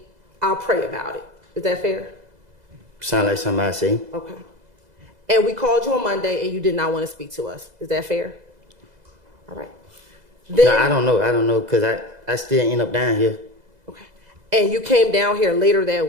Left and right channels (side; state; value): left; late; 2.0 ms